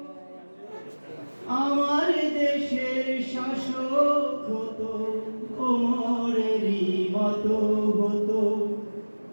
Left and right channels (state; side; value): inverted; both; correlation -1.00